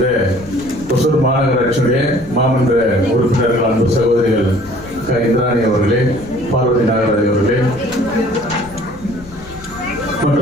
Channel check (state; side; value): noise; left; rumble, 19 dB below the sound